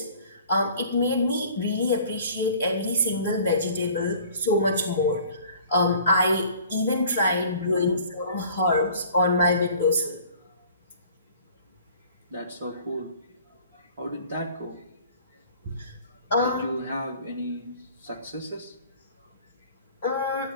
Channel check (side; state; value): both; inverted; correlation -0.50